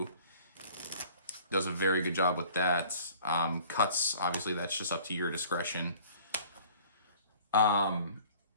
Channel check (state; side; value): inverted; both; correlation -0.50